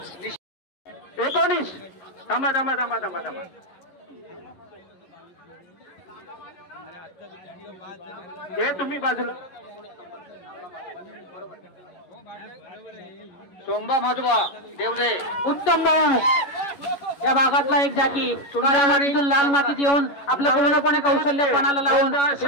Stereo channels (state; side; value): late; right; 11 ms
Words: 19 थांबा थांबा थांबा थांबा थांबा. हे तुम्ही बाजूला. सोंबा माधवा देवरे उत्तम भाऊ या भागातला एक जाकी काळ्या मातीतून लाल मातीत येऊन आपलं पूर्णपणे कौशल्य पणाला लावून